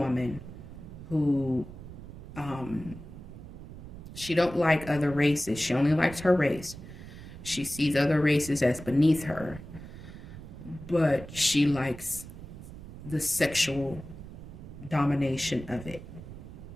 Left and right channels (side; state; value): right; noise; rumble, 13 dB below the sound